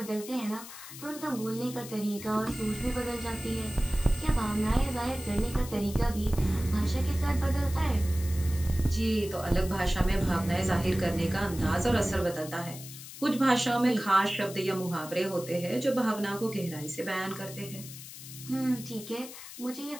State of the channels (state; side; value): noise; left; hiss, 13 dB below the sound